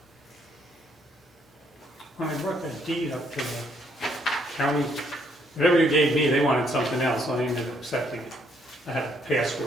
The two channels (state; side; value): normal; both; correlation 0.70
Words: When I brought that deed up to the county, whatever you gave me, they wanted something else, so I ended up accepting it. I had a